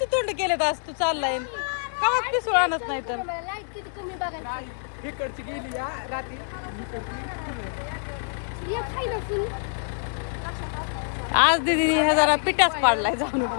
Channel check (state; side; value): silent; right; digital silence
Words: तोंड केलेत आज तू चाललाय का पिसूळ आणत नाही तर. लाईट किती कमी बघायची. इकडची गेली या रात्री एक खाई ना फुल. आज दीदी हे जरा पिठाच पाडलाय जाऊन